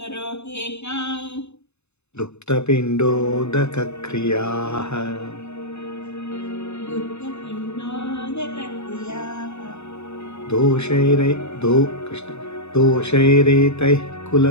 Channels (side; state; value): right; late; 0.81 ms